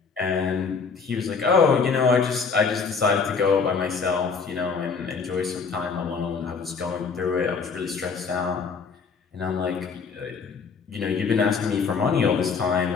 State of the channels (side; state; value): right; quieter; 5.3 dB